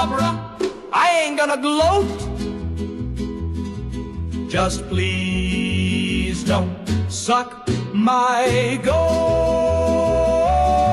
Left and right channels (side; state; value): both; identical; correlation 1.00